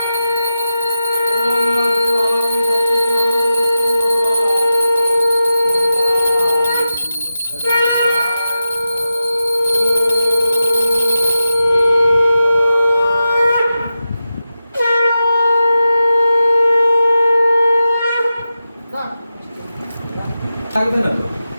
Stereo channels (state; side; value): inverted; both; correlation -0.92